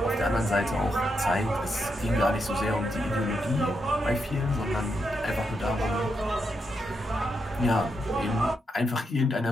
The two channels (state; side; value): normal; both; correlation 0.82